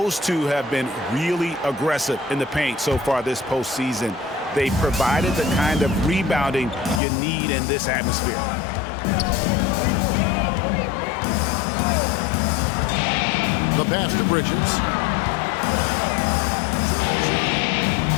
two have been really aggressive in the paint so far this postseason. They provided the kind of rebounding you need in this atmosphere. The pass to Bridges.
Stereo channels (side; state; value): right; drops out; at 7.0 s